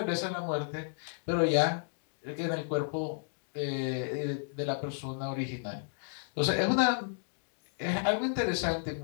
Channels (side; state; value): right; silent; digital silence